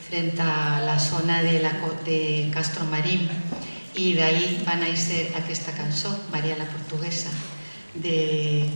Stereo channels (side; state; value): both; inverted; correlation -1.00